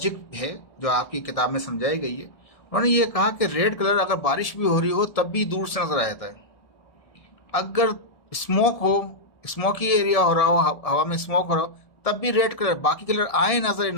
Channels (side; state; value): right; late; 1.7 ms